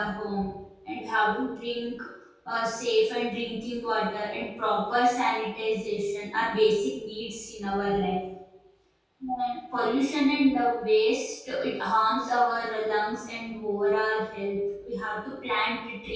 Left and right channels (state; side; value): identical; both; correlation 1.00